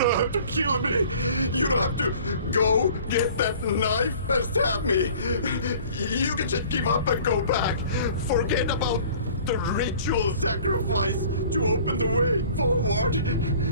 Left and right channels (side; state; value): both; inverted; correlation -0.49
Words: have to kill me. You don't have to go get that knife and stab me. You can just give up and go back. Forget about the ritual sacrifice to open the way forward.